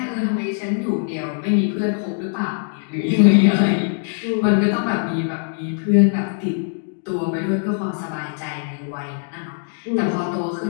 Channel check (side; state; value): right; silent; digital silence